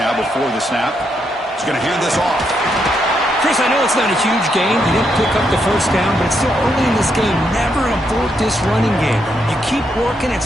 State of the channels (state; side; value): normal; both; correlation 0.79